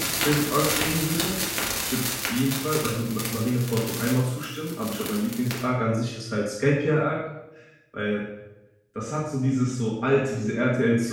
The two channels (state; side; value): identical; both; correlation 1.00